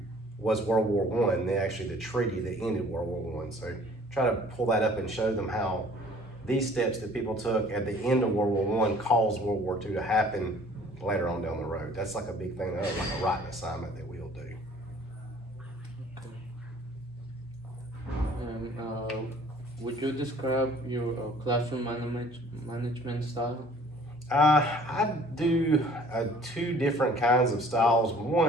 was World War I. Actually, the treaty that ended World War I. So try to pull that up and show them how these steps that people took at the end of World War I caused World War II to happen later on down the road. That's like a big thing, like a writing assignment that we'll do. And would you describe your classroom management style? I do two different kinds of styles.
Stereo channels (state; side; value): normal; both; correlation 0.53